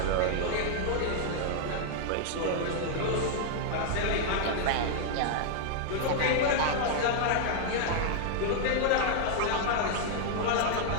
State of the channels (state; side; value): different; both; correlation -0.01